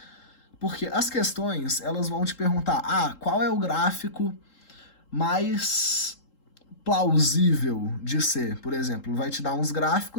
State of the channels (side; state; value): right; late; 3.8 ms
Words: Porque as questões, elas vão te perguntar, qual é o gráfico mais plausível de ser, por exemplo. Vai te dar uns